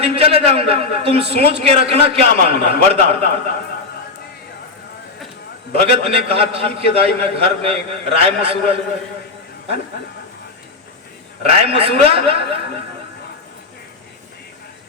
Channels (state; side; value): quieter; right; 3.8 dB